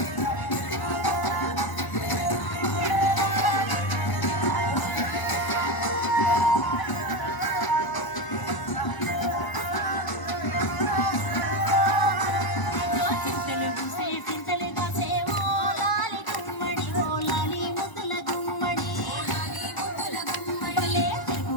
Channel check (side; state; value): right; late; 1.0 ms